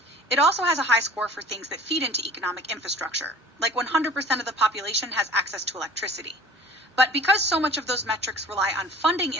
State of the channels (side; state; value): both; normal; correlation 0.45